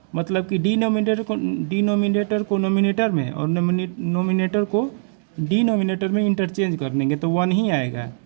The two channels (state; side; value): silent; left; digital silence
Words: मतलब कि डिनोमिनेटर को नोमिनेटर में और नोमिनेटर को डिनोमिनेटर में इंटरचेंज कर देंगे तो 1 ही आएगा,